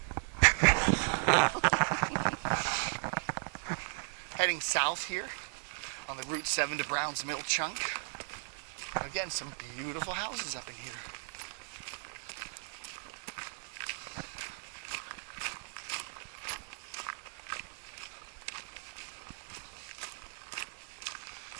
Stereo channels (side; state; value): left; silent; digital silence